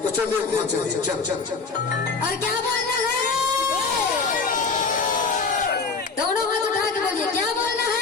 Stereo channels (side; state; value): right; quieter; 4.6 dB